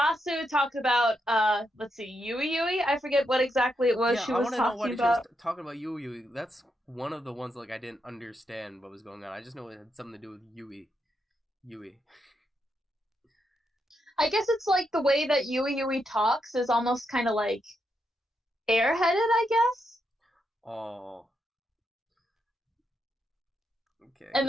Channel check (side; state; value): both; normal; correlation 0.82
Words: talked about let's see, Yui. I forget what exactly it was she was talking about. I want to know what she was talking about. Yui. That's one of the ones like I didn't understand what was going on. I just know it had something to do with Yui. I guess it's like the way that Yui talks is almost kind of like airheaded, I guess. Oh. Okay. And